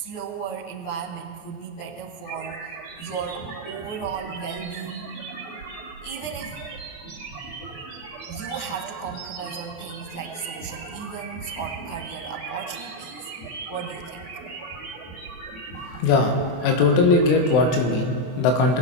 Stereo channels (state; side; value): late; right; 23 ms